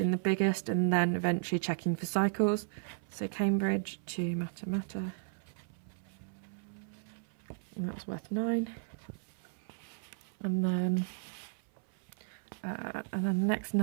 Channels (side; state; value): left; silent; 55 dB below the other